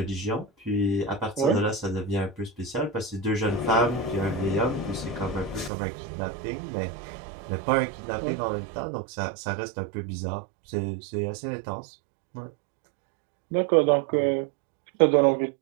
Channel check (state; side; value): drops out; left; at 5.7 s